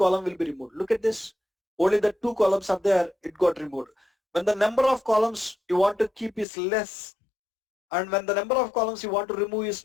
will be removed. Look at this. Only the 2 columns are there, it got removed. When the number of columns you want to keep is less, and when the number of columns you want to remove is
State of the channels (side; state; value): right; drops out; at 6.5 s